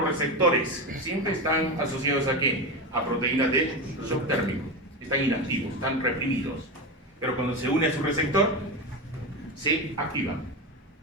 receptores? Siempre están asociados ¿a qué? A proteínas de shock térmico. Están inactivos, están reprimidos. Pero cuando se une a su receptor, se activan.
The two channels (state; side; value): normal; both; correlation 0.19